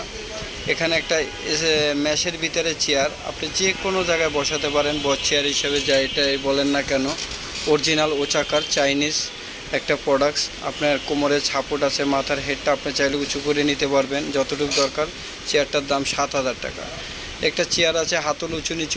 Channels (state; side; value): identical; both; correlation 1.00